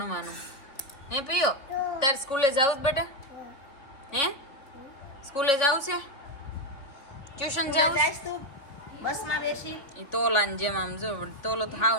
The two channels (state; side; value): late; right; 3.5 ms